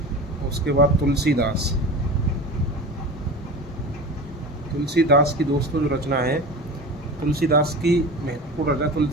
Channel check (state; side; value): normal; both; correlation 0.32